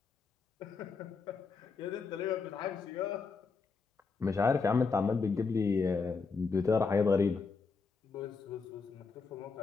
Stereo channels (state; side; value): quieter; right; 4.7 dB